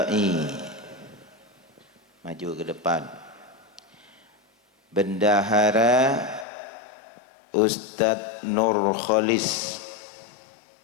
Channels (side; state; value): right; drops out; at 6.5 s